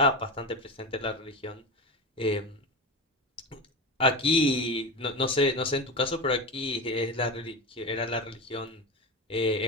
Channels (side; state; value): both; normal; correlation 0.22